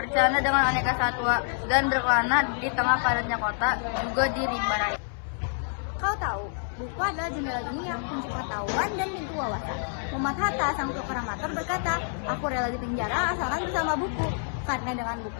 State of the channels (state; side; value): silent; right; 60 dB below the other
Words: dengan aneka satwa, dan berkelana di tengah padatnya kota, juga di rimba raya. Kau tahu, buku adalah jendela dunia, kunci pengetahuan dan pintu wawasan. Muhammad Hatta, sang proklamator berkata, aku rela di penjara asalkan bersama buku. Karena dengan